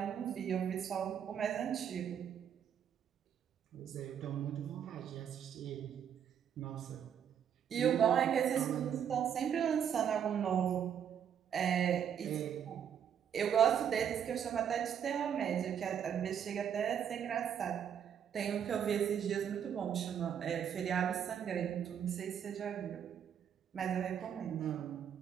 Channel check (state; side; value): quieter; left; 8.6 dB